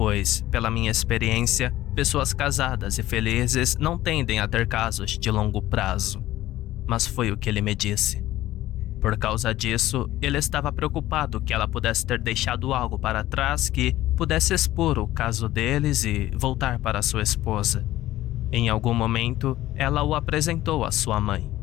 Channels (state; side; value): quieter; right; 15.1 dB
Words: pela minha experiência, pessoas casadas e felizes não tendem a ter casos de longo prazo. Mas foi o que ele me disse. Por causa disso, ele estava preocupado que ela pudesse ter deixado algo para trás que pudesse expor o caso deles e voltar para sua esposa. Em algum momento, ela o apresentou à sua mãe,